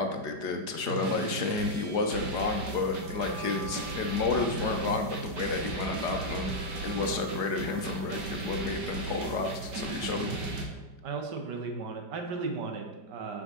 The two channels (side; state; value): left; late; 4.8 ms